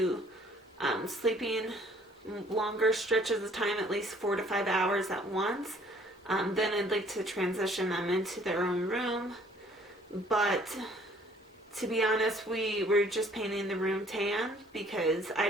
sleeping longer stretches of time, at least 4 to 5 hours at once, then I'd like to transition them into their own room. But to be honest, we're just painting the room tan because I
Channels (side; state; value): both; normal; correlation 0.58